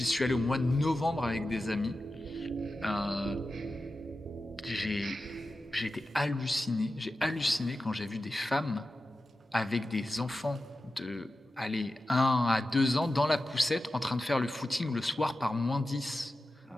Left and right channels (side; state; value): both; normal; correlation 0.93